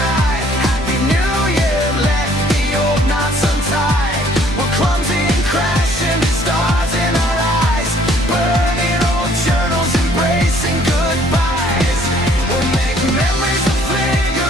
Happy New Year, let the old knots untie. We're clumsy and crashing, stars in our eyes, burning old journals, embracing goodbyes. We'll make memories that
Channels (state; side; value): normal; both; correlation 0.60